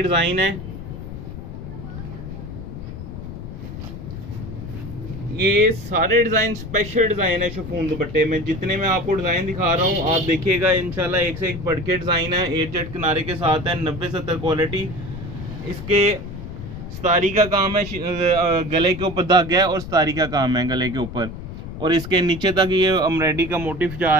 डिजाइन है। ये सारे डिजाइन स्पेशल डिजाइन है शिफॉन दुपट्टे में। जितने मैं आपको डिजाइन दिखा रहा हूँ आप देखिएगा, इंशाल्लाह एक से एक बढ़ के डिजाइन है। 8 जेट किनारे के साथ है, 90-70 क्वालिटी। इसके स्तारी का काम है, गले के ऊपर धागा है और स्तारी का काम है गले के ऊपर, और इसके नीचे तक ये एम्ब्रॉयडरी का मोटिफ जा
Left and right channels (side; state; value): left; noise; rumble, 10 dB below the sound